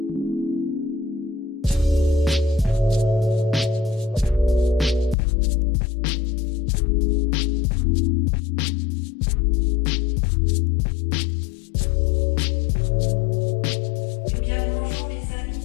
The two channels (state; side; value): drops out; right; at 5.2 s